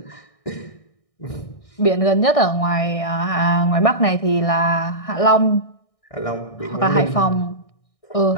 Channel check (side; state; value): right; late; 1.6 ms